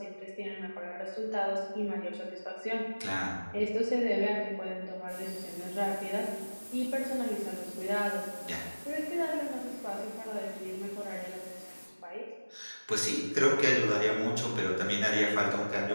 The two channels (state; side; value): inverted; both; correlation -1.00